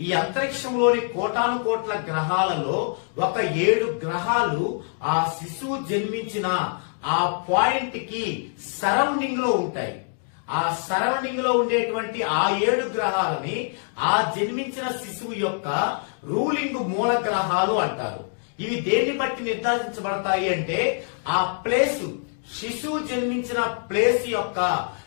ఈ అంతరిక్షంలోని కోటాను కోట్ల గ్రహాలలో ఒక 7 గ్రహాలు ఆ శిశువు జన్మించిన ఆ పాయింట్ కి సరౌండింగ్ లో ఉంటాయి. ఆ సరౌండింగ్ లో ఉండేటువంటి ఆ 7 గ్రహాలని ఆ జన్మించిన శిశువు యొక్క రూలింగ్ మూల గ్రహాలు అంటారు. ఇవి దేన్ని బట్టి నిర్ధారించబడతాయి అంటే ఆ ప్లేస్, శిశువు జన్మించిన ప్లేస్ యొక్క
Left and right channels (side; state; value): right; silent; 62 dB below the other